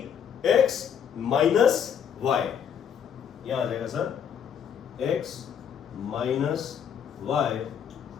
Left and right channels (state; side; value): quieter; right; 8.1 dB